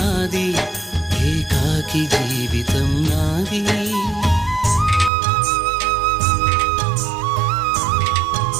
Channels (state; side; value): drops out; left; at 5.1 s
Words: ఏకాకి జీవితం నాది